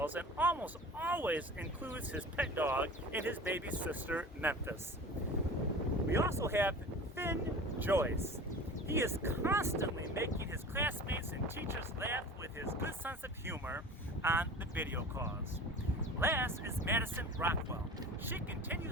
and almost always includes his pet dog and his baby sister, Memphis. We also have Finn Joyce. He is constantly making his classmates and teachers laugh with his good sense of humor on the video calls. Last is Madison Rockwell. She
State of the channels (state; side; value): normal; both; correlation 0.37